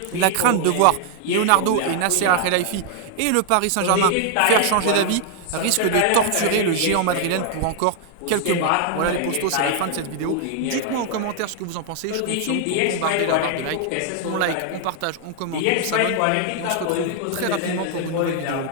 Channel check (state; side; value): different; both; correlation 0.00